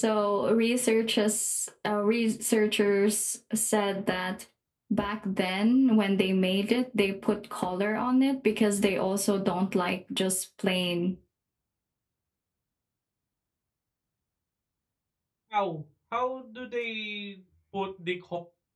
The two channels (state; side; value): identical; both; correlation 1.00